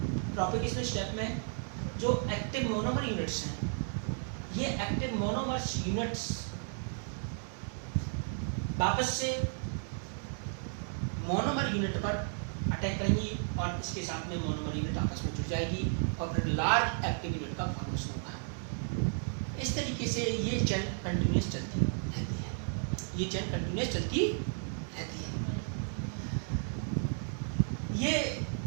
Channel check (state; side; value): silent; left; 55 dB below the other